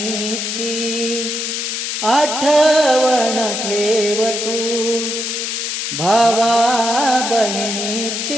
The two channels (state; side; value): noise; left; hiss, 3 dB below the sound